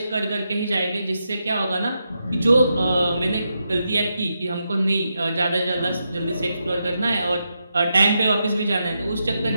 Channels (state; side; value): inverted; both; correlation -0.85